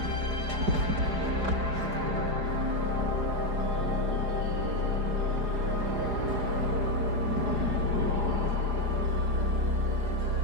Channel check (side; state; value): left; late; 4.9 ms